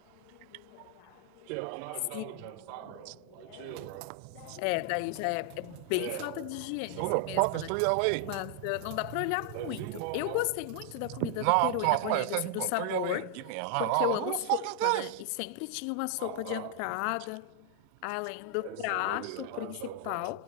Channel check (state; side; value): different; both; correlation 0.00